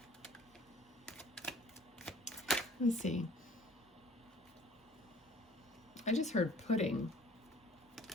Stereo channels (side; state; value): both; normal; correlation 0.52